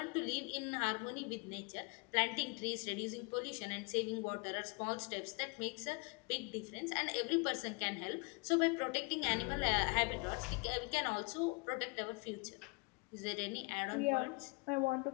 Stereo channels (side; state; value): right; quieter; 30.5 dB